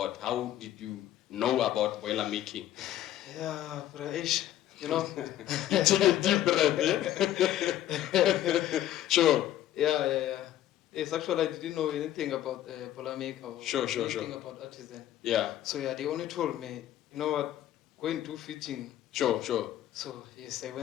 How did you know about boiler making? Yeah, Braish, you know. You take a deep breath, yeah? Sure. Yeah. Yes, actually, I didn't know anything about Boilermaker or Sure. anything about artisan. Yeah. So yeah, they only told me, you know what, go and do fitting. Sure. So yes, I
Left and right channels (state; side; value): quieter; right; 12.5 dB